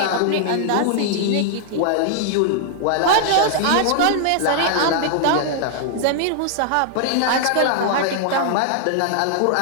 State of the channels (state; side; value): different; both; correlation -0.01